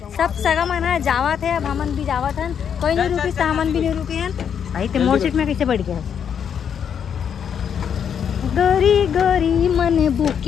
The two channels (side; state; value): right; quieter; 7.9 dB